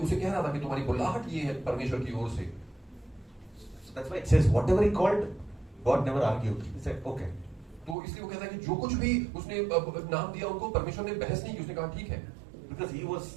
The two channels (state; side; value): drops out; left; at 8.0 s